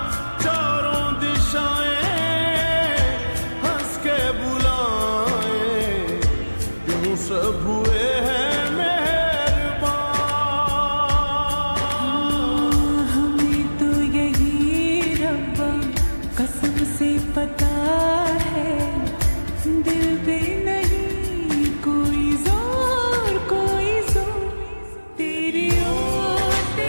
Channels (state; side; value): inverted; both; correlation -1.00